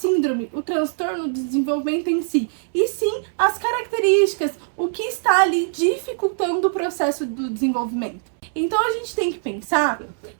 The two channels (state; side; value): silent; left; digital silence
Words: o transtorno do desenvolvimento em si, e sim as características, o que está ali dificultando o processo do desenvolvimento. Então a gente tem que pensar